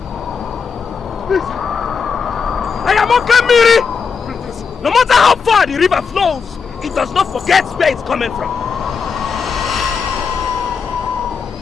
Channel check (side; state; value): right; quieter; 5.8 dB